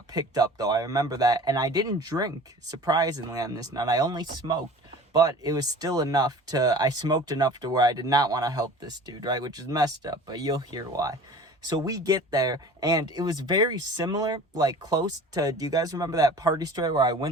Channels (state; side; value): normal; both; correlation 0.43